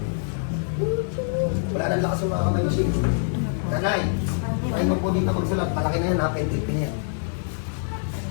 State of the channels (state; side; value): silent; right; digital silence